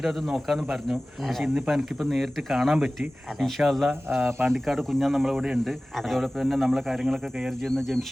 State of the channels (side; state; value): both; normal; correlation 0.97